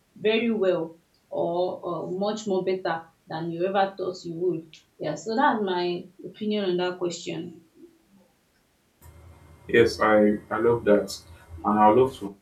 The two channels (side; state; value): both; identical; correlation 1.00